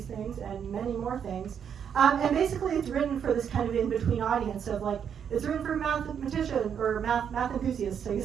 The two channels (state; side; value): quieter; left; 7.9 dB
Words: things and many more things. And basically it's written for this kind of in-between audience of like, it's written for mathematicians or math enthusiasts, I